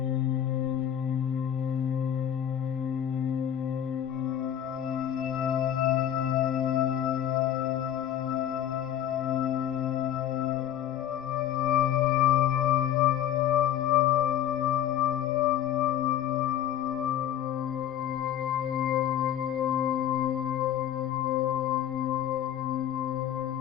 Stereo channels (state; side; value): quieter; right; 10.5 dB